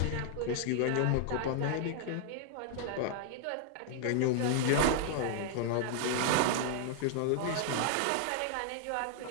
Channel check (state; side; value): different; both; correlation -0.01